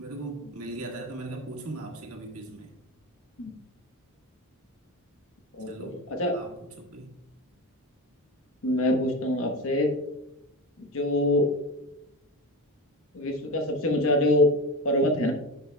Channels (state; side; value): normal; both; correlation 0.23